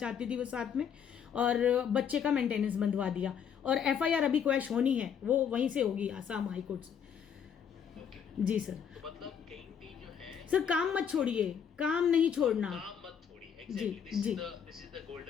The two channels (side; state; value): right; quieter; 7.7 dB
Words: थी वो साथ में, और बच्चे का मेंटेनेंस बंधवा दिया। और FIR अभी क्वैश होनी है, वो वहीं से होगी आसाम हाई कोर्ट से। जी सर। तो मतलब कहीं भी जो है सर काम मत छोड़िए, काम नहीं छोड़ना, काम मत छोड़िए। Exactly this is the